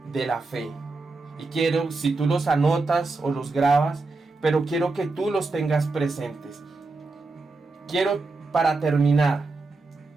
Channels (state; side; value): quieter; left; 3.6 dB